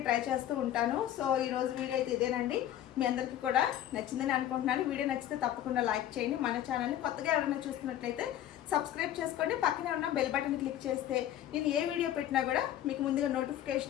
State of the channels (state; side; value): quieter; right; 11.9 dB